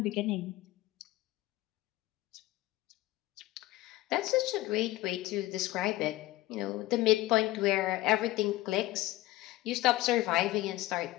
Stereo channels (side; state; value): right; quieter; 17.2 dB